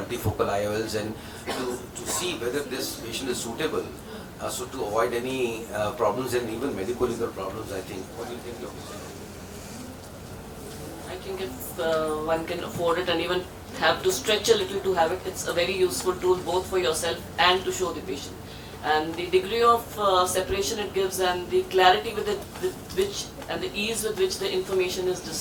IOLs, and to see whether this patient is suitable, so to avoid any problems and even medical legal problems, I think. What do you think, Dr. I think if one can afford it and even have to stretch a little to have it, it's a very useful tool both for yourself and to show the patient. And the degree of separation it gives and the clarity with which and the ease with which the information is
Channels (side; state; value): both; identical; correlation 1.00